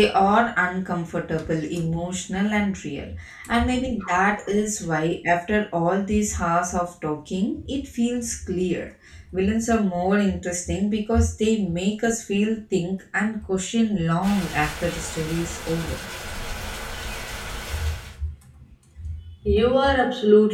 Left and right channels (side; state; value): both; identical; correlation 1.00